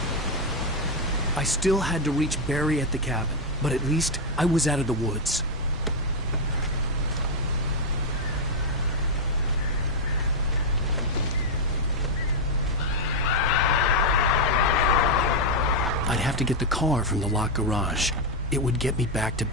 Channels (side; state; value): both; normal; correlation 0.01